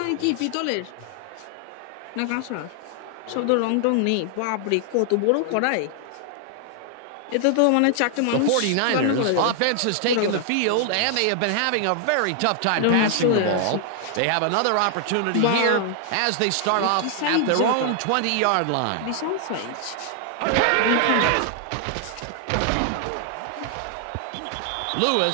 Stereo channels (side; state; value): both; different; correlation 0.00